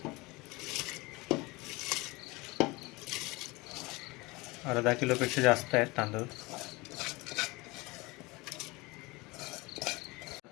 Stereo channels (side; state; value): right; quieter; 23.6 dB